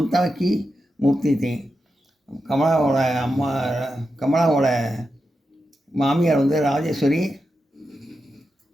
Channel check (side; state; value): both; normal; correlation 0.89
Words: की मूर्ति थी. கமலாவோட மாமியார் வந்து ராஜேஸ்வரி